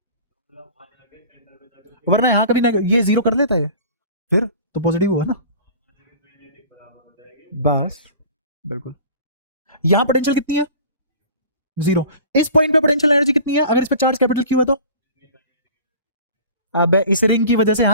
वरना यहां कभी ना ये जीरो कर लेता है, फिर तो पॉजिटिव हुआ ना। बस बिल्कुल। यहां पोटेंशियल कितनी है? जीरो। इस पॉइंट पे पोटेंशियल एनर्जी कितनी है अगर इस पे चार्ज कैपिटल क्यू है तो? अब इस रिंग की वजह से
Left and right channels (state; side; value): inverted; both; correlation -0.42